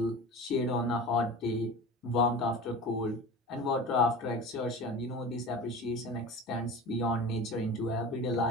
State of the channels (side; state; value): both; normal; correlation 0.34